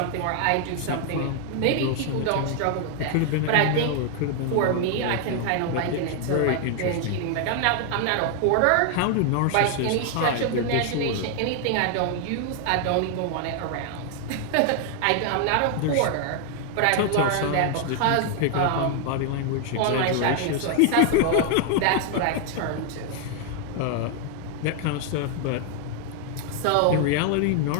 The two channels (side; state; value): both; different; correlation 0.00